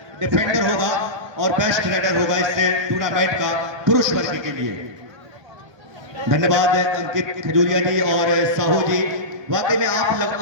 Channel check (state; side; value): late; left; 1.3 ms